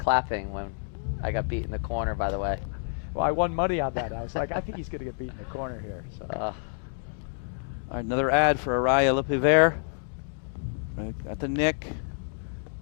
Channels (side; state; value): right; silent; 59 dB below the other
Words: when I got beat in the corner, by the way. Well, I won money on that. I was like, I think he's going to get beat in the corner here. So. All right, another ad for Arraya LePivert. At the nick.